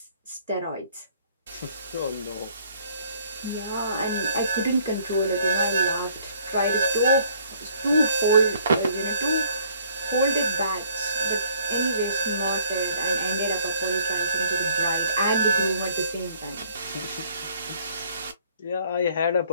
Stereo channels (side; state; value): both; inverted; correlation -0.61